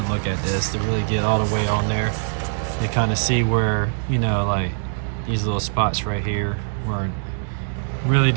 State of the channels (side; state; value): left; silent; digital silence